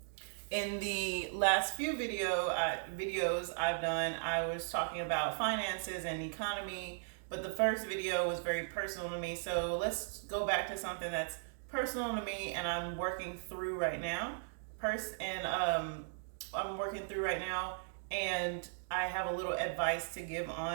in the last few videos I've done, I was talking about finances and economy, but the first video was very personal to me. So let's go back to something that's personal to me and I'm working through right now. I'm working through right now, and I have a little advice to give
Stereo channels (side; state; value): left; silent; digital silence